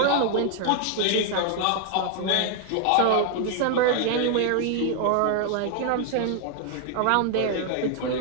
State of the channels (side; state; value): both; different; correlation 0.00